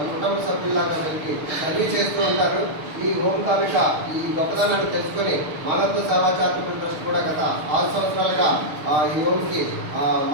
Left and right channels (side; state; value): left; late; 6.7 ms